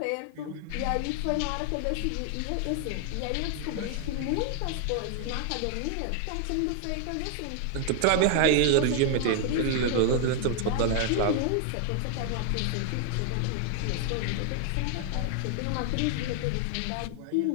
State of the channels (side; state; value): both; different; correlation 0.00